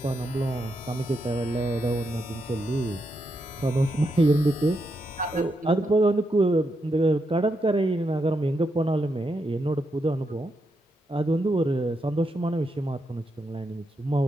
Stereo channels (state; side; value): normal; both; correlation 0.83